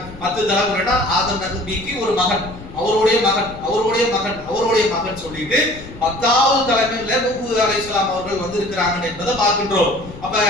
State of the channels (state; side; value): noise; left; rumble, 16 dB below the sound